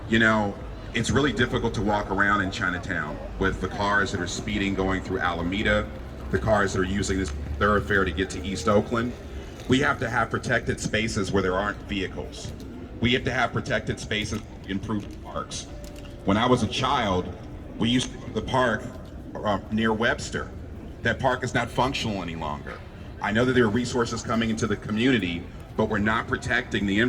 You know, it's really difficult to walk around in Chinatown with the cars that are speeding going through Alameda, the cars that are using this thoroughfare to get to East Oakland. We have to have protected spaces where there aren't vehicles. We have to have protected spaces to improve parks. When I was a child, we used to go to the park near Webster. That park is not functional any longer. I know that there are resources coming into the community, but we're not protecting the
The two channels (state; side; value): identical; both; correlation 1.00